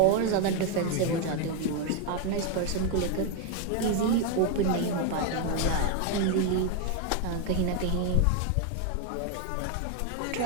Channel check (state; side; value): different; both; correlation 0.01